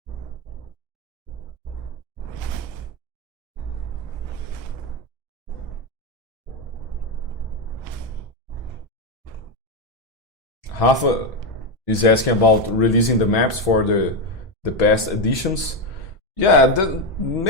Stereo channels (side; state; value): both; normal; correlation 0.09